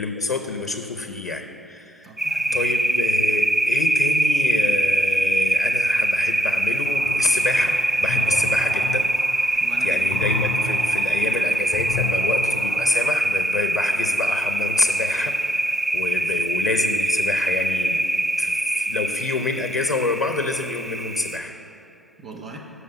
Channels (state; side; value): normal; both; correlation 0.76